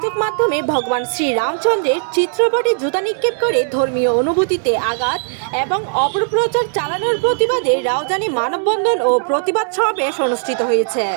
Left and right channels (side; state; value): left; silent; 66 dB below the other